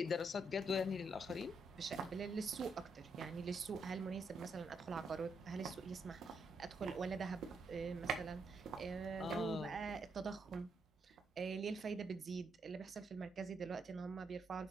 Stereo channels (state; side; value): normal; both; correlation 0.78